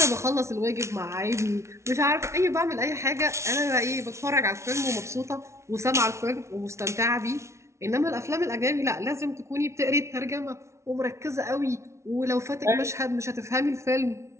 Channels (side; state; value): left; late; 0.13 ms